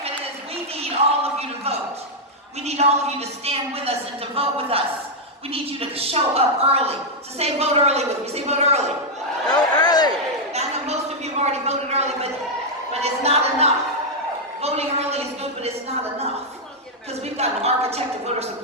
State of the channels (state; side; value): normal; both; correlation -0.02